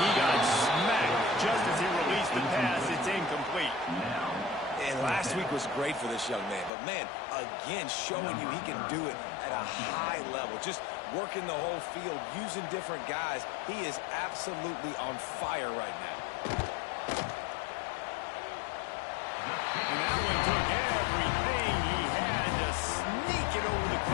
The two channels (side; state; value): right; drops out; at 6.7 s